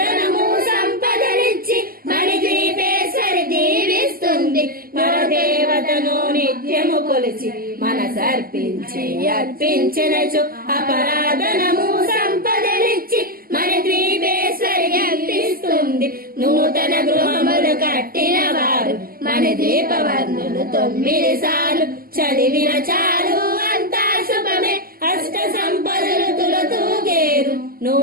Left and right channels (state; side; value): late; left; 0.43 ms